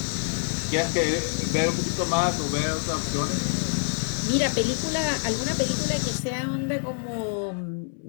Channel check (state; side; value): silent; right; 59 dB below the other